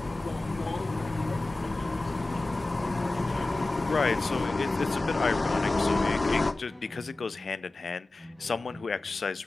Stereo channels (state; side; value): quieter; right; 3.0 dB